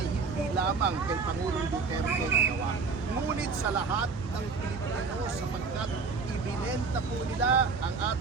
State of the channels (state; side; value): quieter; left; 4.8 dB